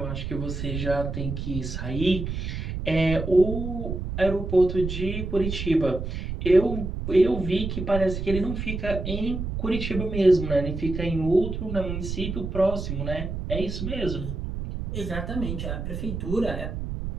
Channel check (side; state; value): right; noise; rumble, 5 dB below the sound